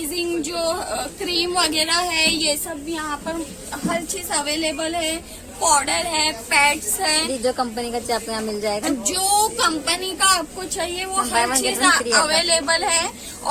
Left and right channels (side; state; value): both; identical; correlation 1.00